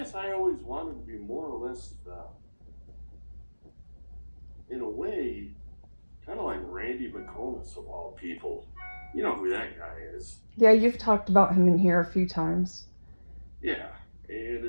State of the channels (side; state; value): both; inverted; correlation -1.00